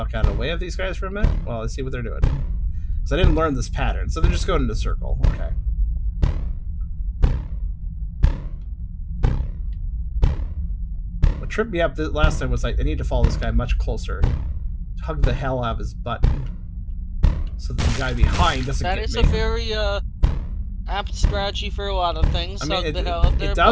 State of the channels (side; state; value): both; identical; correlation 1.00